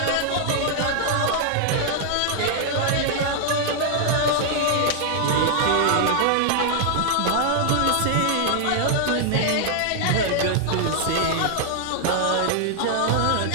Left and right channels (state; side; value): different; both; correlation 0.00